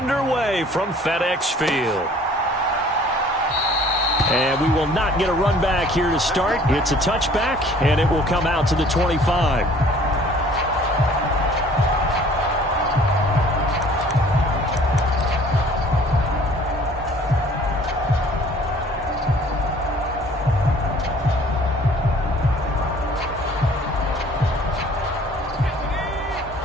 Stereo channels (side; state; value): both; normal; correlation 0.53